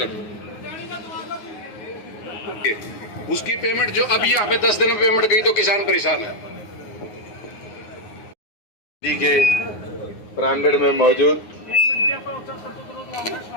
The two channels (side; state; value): right; late; 9.6 ms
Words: उसकी पेमेंट जो अभी यहाँ पे 10 दिन में पेमेंट गई तो किसान परेशान है। के प्रांगण में मौजूद